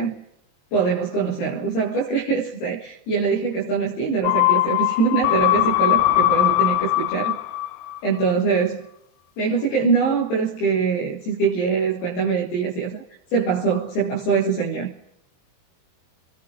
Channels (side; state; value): right; late; 23 ms